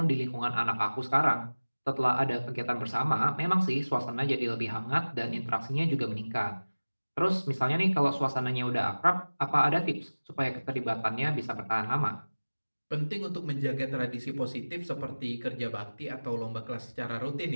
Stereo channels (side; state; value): both; inverted; correlation -1.00